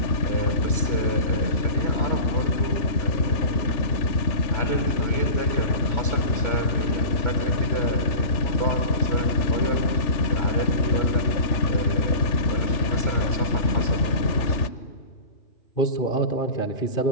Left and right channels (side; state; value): right; late; 3.4 ms